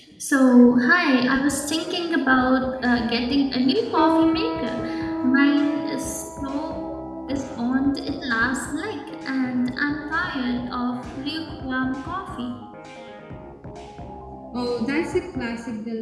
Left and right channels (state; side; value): identical; both; correlation 1.00